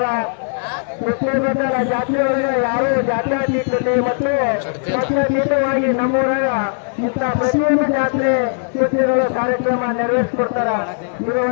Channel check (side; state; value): right; silent; digital silence